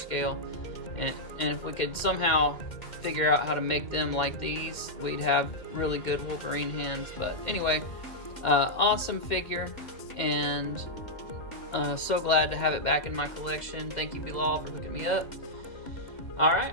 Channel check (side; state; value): right; late; 2.1 ms